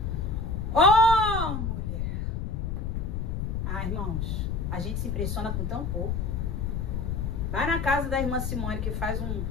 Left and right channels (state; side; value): noise; left; rumble, 1 dB below the sound